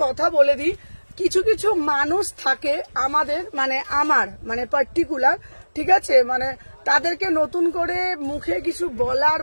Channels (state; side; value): inverted; both; correlation -1.00